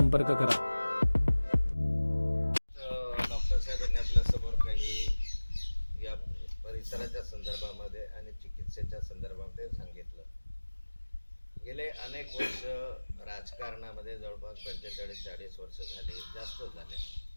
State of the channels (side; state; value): both; inverted; correlation -1.00